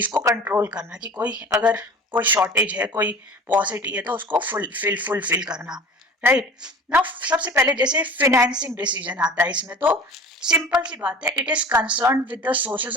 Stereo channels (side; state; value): both; normal; correlation 0.40